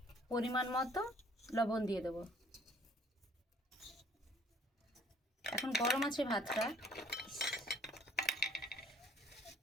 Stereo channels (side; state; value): both; normal; correlation 0.58